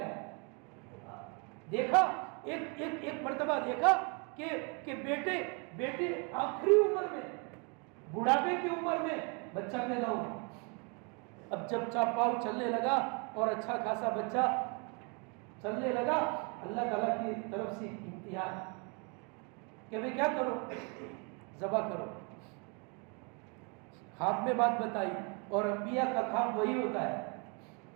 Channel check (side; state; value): left; quieter; 34.0 dB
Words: دیکھا ایک مرتبہ دیکھا کہ بیٹے آخری عمر میں، بڑھاپے کی عمر میں بچہ پیدا ہوا. اب جب چاپاؤ چلنے لگا اور اچھا خاصا بچہ چلنے لگا، اللہ تعالیٰ کی طرف سے امتحان کہ بھئی کیا کرو، ذبح کرو. خواب میں بات بتائی، اور انبیاء کا خواب وہی ہوتا ہے.